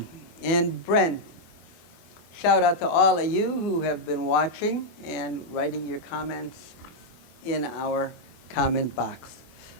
and Brent. Shout out to all of you who have been watching and writing your comments in our comment box.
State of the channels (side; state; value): right; late; 24 ms